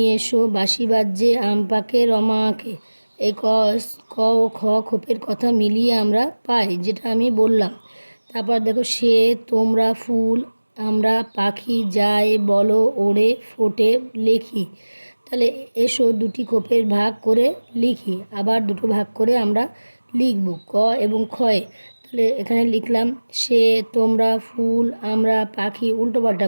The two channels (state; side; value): inverted; both; correlation -1.00